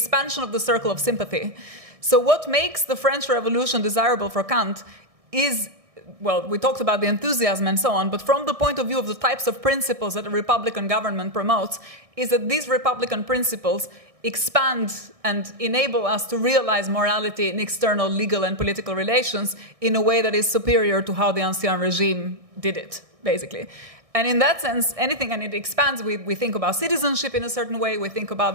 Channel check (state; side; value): late; left; 1.6 ms